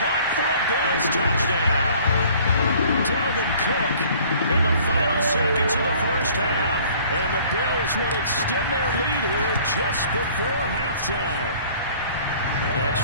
for a Bills touchdown. Dalvin Cook in the final seconds of the first half. And the Bills would extend their lead here just before halftime.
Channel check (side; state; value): both; inverted; correlation -0.54